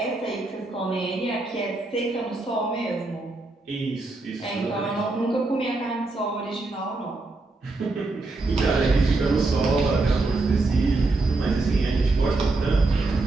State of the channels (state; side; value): quieter; left; 3.2 dB